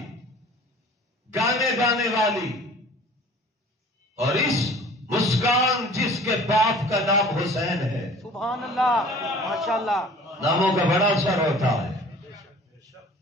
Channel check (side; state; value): both; normal; correlation 0.47